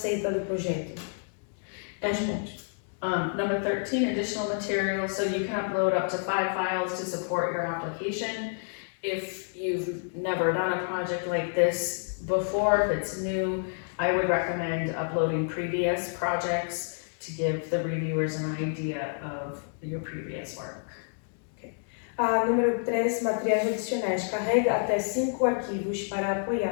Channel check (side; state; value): right; silent; digital silence